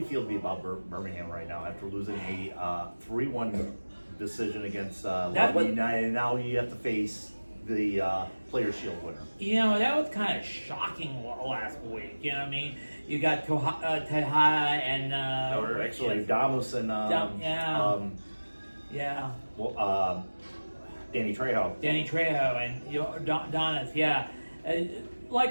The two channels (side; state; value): both; inverted; correlation -1.00